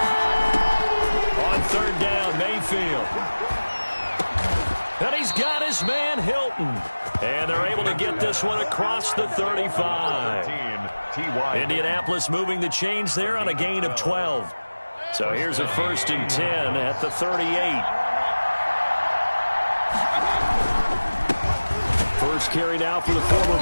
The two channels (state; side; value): inverted; both; correlation -1.00